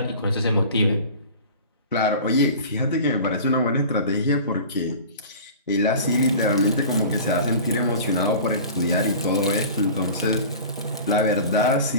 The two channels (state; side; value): inverted; both; correlation -0.39